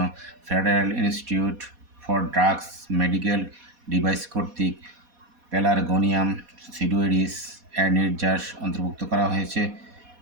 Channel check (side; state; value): left; late; 4.1 ms